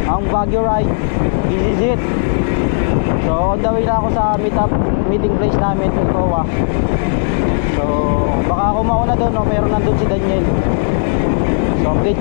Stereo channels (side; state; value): right; silent; digital silence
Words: ang Baguio ride. This is it. So on the way na ako sa meeting place namin sa Towa. So baka ako mauna doon, no? Meron nandun si Daniel. So update